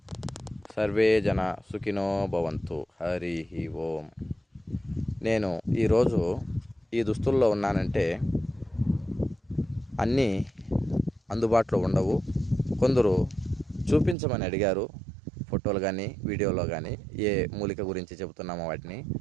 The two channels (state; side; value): drops out; left; at 14.2 s